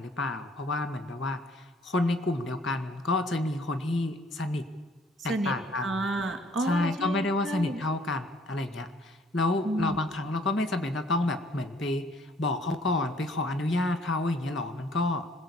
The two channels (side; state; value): both; normal; correlation 0.60